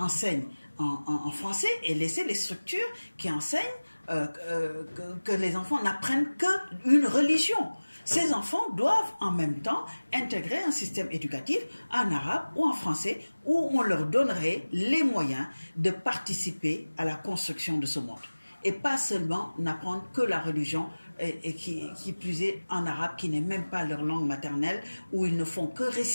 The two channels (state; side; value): inverted; both; correlation -1.00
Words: en français et laisser les structures qui enseignent que les enfants n'apprennent qu'une religion? Ces enfants doivent en même temps intégrer un système éducatif en arabe ou en français où on leur donnerait les moyens de participer à la construction de ce monde. Et pas seulement n'apprendre que la religion et qui plus est en arabe, qui n'est même pas leur langue maternelle, où ils ne font que